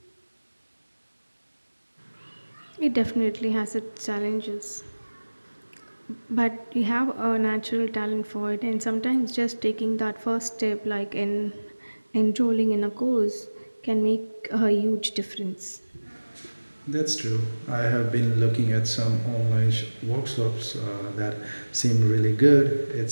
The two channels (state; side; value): inverted; both; correlation -1.00